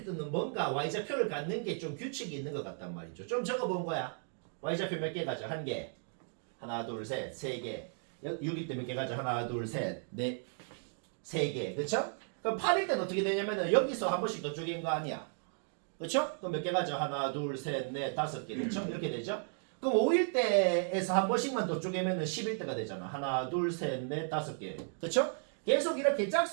때는 뭔가 Y좌표를 갖는 게 좀 규칙이 있는 것 같단 말이죠. 좀 적어본 거야. Y좌표 몇 개 가져? 한 개. 하나, 둘, 셋, 세 개. 6일 때 몇 개 가져? 하나, 둘, 셋, 넷, 세 개. 그쵸? 그럼 8일 때는 어떻게 되냐면은 여기서 한 번씩 더 쪼갠 거 아니야. 그쵸? 그럼 몇 개 가져? 하나, 둘, 셋, 넷, 다섯 개. 그쵸? 이렇게 되죠? 그럼 5일 때에서 한 번씩만 더 쪼개면은 10일 때가 되잖아. 하나, 둘, 셋, 넷, 다섯 개. 그쵸? 계속 이렇게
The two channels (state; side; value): silent; left; 55 dB below the other